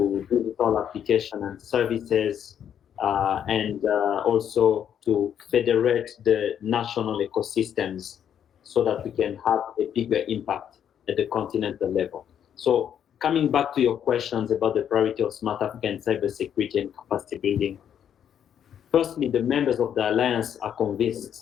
digital application and services, and also to federate the national ecosystems so that we can have a bigger impact at the continental level. So coming back to your questions about the priority of Smart Africa and cybersecurity and capacity building, firstly, the members of the Alliance are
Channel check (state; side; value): quieter; right; 9.1 dB